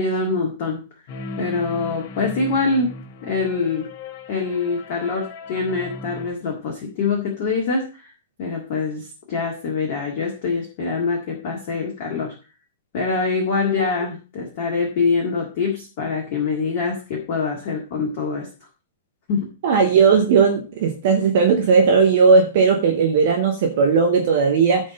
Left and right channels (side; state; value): both; inverted; correlation -0.41